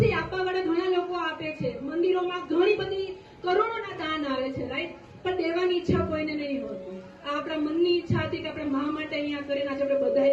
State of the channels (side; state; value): both; identical; correlation 1.00